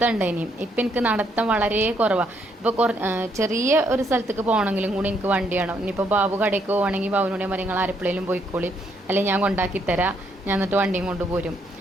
ഇനിയും ഇപ്പം എനിക്ക് നടത്തം വളരെ കുറവാണ്. ഇപ്പോൾ ചെറിയ ഒരു സ്ഥലത്തേക്ക് പോകണമെങ്കിലും കൂടി എനിക്ക് വണ്ടി വേണം. ഇനിയിപ്പോൾ ബാബു കടയ്ക്ക് പോകണമെങ്കിൽ ബാബുവിനോട് പറയും നിങ്ങൾ ആരെപ്പോഴേലും പോയിക്കോളി, അല്ലെങ്കിൽ ഞാൻ കൊണ്ടാക്കി തരാം, ഞാൻ എന്നിട്ട് വണ്ടിയും കൊണ്ട് പോരും,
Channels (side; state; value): both; normal; correlation 0.72